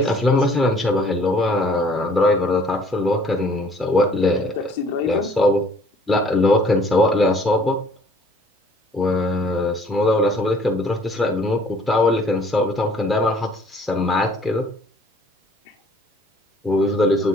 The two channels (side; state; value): both; normal; correlation 0.57